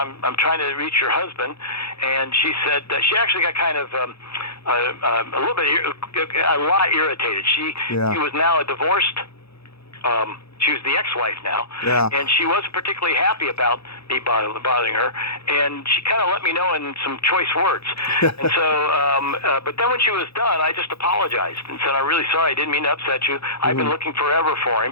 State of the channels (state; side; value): late; right; 0.78 ms